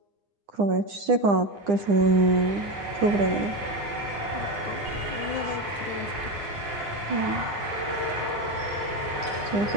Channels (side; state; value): left; late; 9.9 ms